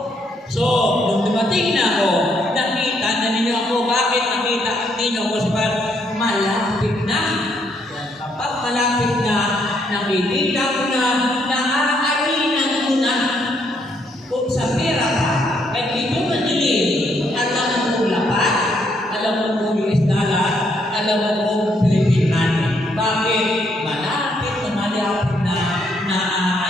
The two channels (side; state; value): both; normal; correlation 0.73